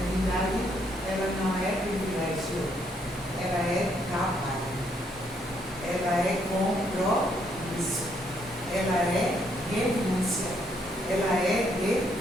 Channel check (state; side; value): normal; both; correlation 0.72